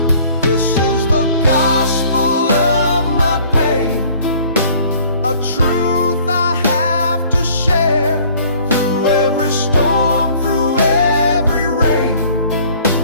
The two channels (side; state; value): both; inverted; correlation -0.54